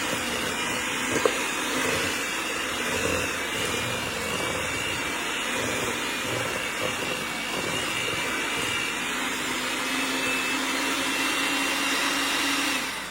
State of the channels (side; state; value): right; noise; hum, 21 dB below the sound